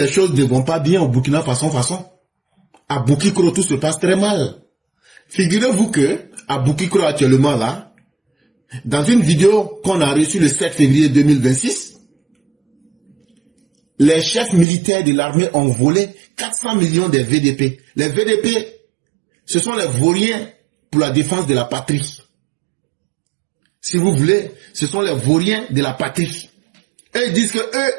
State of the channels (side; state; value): left; drops out; at 14.7 s